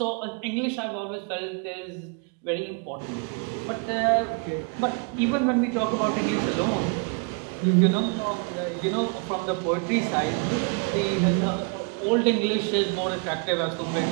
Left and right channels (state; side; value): quieter; left; 34.6 dB